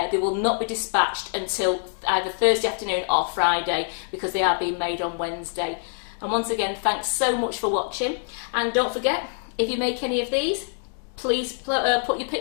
they will not be dispatched until either Thursday afternoon or Friday, because they are being made on Wednesday. And once again, thanks so much for watching. And don't forget, if you make any of these, please put your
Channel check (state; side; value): silent; right; 62 dB below the other